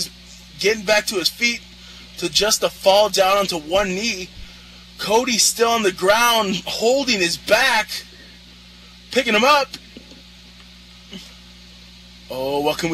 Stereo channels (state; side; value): identical; both; correlation 1.00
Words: his feet to just to fall down onto one knee. Cody's still on the ground holding his back, picking him up. Oh, what can